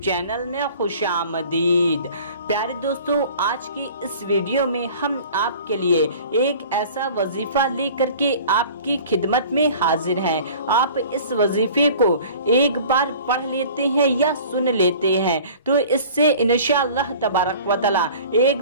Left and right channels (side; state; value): both; inverted; correlation -0.45